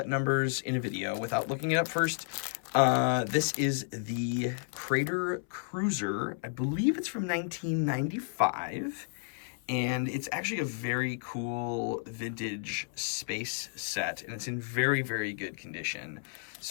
numbers in a video without looking it up first. This is the Crater Cruiser. I believe it's from 1995. And it's actually a very cool vintage space set, and it's in very, very good condition.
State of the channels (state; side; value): silent; right; 56 dB below the other